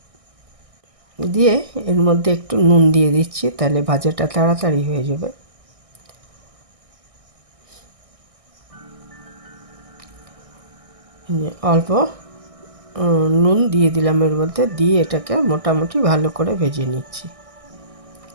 দিয়ে এর মধ্যে একটু নুন দিয়ে দিচ্ছি, তাহলে ভাজাটা তাড়াতাড়ি হয়ে যাবে। অল্প নুন দিয়ে দিলাম এর মধ্যে, দিয়ে এটাকে মোটামুটি ভালো করে ভেজে নিচ্ছি।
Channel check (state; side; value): late; left; 1.6 ms